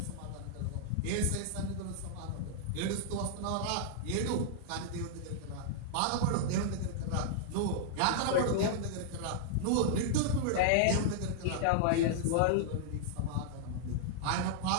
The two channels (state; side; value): different; both; correlation -0.01